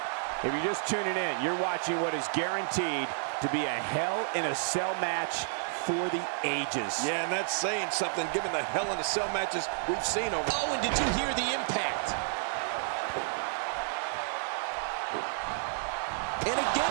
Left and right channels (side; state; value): left; silent; digital silence